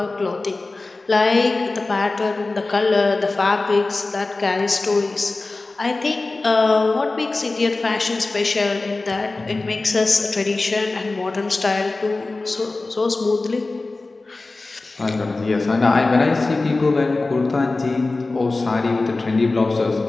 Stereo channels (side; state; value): right; quieter; 3.4 dB